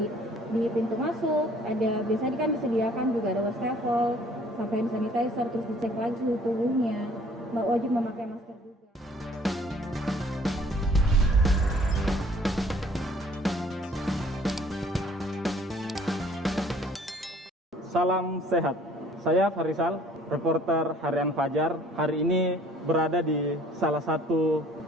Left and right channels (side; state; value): both; normal; correlation 0.56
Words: di pintu masuk, biasanya kan disediakan juga ada wastafel, sampai hand sanitizer, terus dicek lagi suhu tubuhnya, wajib memakai masker juga. Salam sehat. Saya Farisal, reporter Harian Fajar. Hari ini berada di salah satu